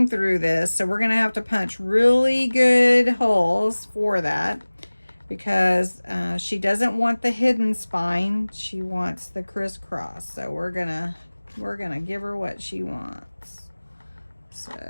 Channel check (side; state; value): both; inverted; correlation -1.00